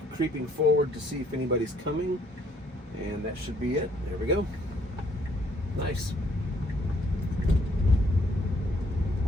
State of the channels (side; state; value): both; normal; correlation 0.66